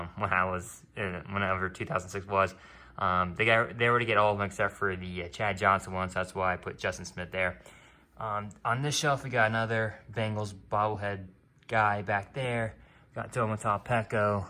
whenever 2006 was. They already get all of them except for the Chad Johnson one, so that's why I put Justin Smith there. On this shelf we got another Bengals bobblehead guy back there. Got Tomotaw Peko,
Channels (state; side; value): identical; both; correlation 1.00